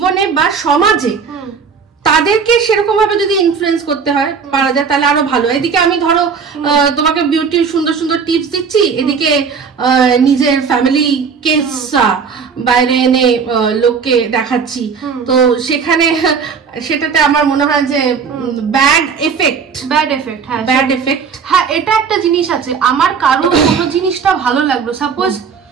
বা সমাজে তাদেরকে সেরকম ভাবে যদি ইনফ্লুয়েন্স করতে হয় পারা যায় তাহলে আরো ভালো। এদিকে আমি ধরো তোমাকে বিউটির সুন্দর সুন্দর টিপস দিচ্ছি, এদিকে নিজের ফ্যামিলি কেস বাইরে এনে লোককে দেখাচ্ছি, তো সেটাতে আমার মনে হয় যে ব্যাড এফেক্ট। হ্যাঁ, এটা একটা জিনিস আছে, আমার কারো কোনো জিনিসটা ভালো লাগলো, সাপোজ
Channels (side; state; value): left; quieter; 5.9 dB